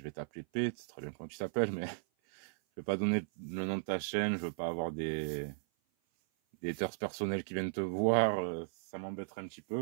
vais t'appeler P, c'est très bien comment tu t'appelles, mais je ne vais pas donner le nom de ta chaîne, je ne veux pas avoir des haters personnels qui viennent te voir, ça m'embêterait un petit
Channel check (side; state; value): left; silent; 54 dB below the other